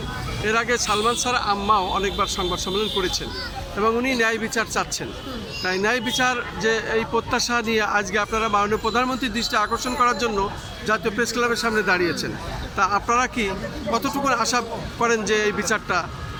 এর আগে সালমান শাহর আম্মাও অনেকবার সংবাদ সম্মেলন করেছেন এবং উনি ন্যায় বিচার চাচ্ছেন, তাই ন্যায় বিচার যে এই প্রত্যাশা নিয়ে আজকে আপনারা মাননীয় প্রধানমন্ত্রীর দৃষ্টি আকর্ষণ করার জন্য জাতীয় প্রেস ক্লাবের সামনে দাঁড়িয়েছেন, তা আপনারা কি কতটুকু আশা করেন যে এই বিচারটা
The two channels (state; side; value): identical; both; correlation 1.00